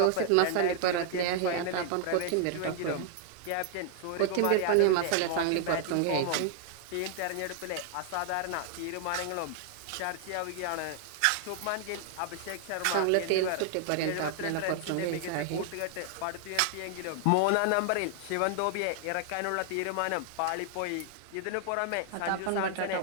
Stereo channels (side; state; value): both; different; correlation 0.00